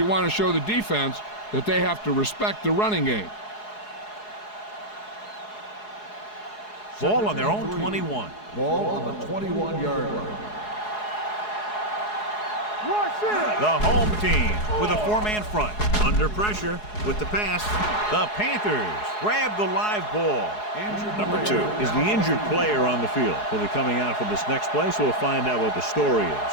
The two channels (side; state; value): right; late; 4.8 ms